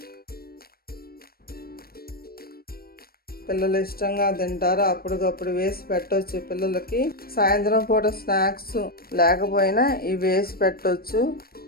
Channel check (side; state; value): right; late; 0.44 ms